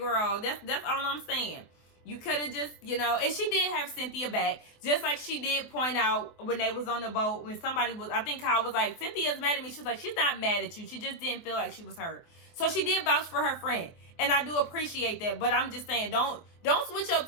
That's all I'm saying. You could have just, and she did have Cynthia back. Just like she did point out when they was on the boat, when somebody was, I think Kyle was like, Cynthia's mad at me. She was like, she's not mad at you. She just didn't feel like she was hurt. So she did vouch for her friend. And I do appreciate that. But I'm just saying, don't switch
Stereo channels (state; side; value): late; right; 24 ms